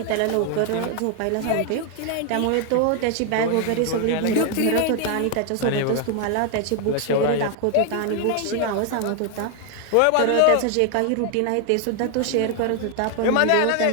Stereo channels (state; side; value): different; both; correlation 0.01